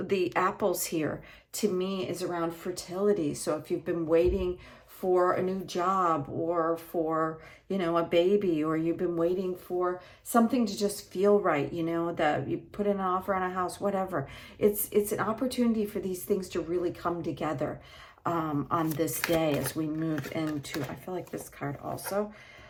the apples here, to me is around fertility. So if you've been waiting for a new job, or for, a baby, or you've been waiting for something to just feel right, that you put in an offer on a house, whatever. It's an opportunity for these things to really come together on this day as we move into, I feel like this card also.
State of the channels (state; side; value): identical; both; correlation 1.00